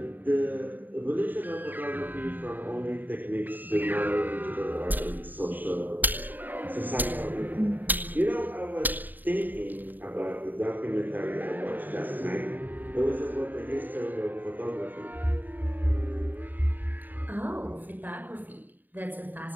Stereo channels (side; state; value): left; late; 0.088 ms